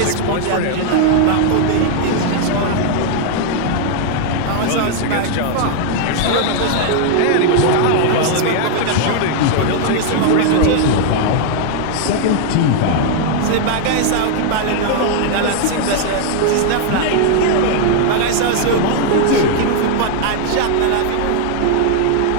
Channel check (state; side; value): different; both; correlation 0.00